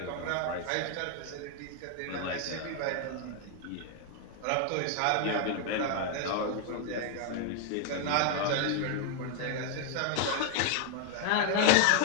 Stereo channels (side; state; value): both; different; correlation 0.00